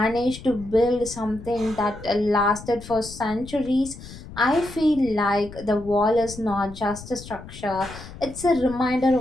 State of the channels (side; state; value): left; noise; rumble, 15 dB below the sound